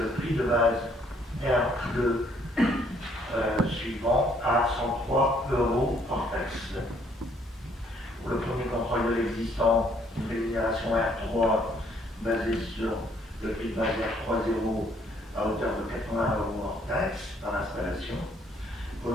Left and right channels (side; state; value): both; normal; correlation 0.65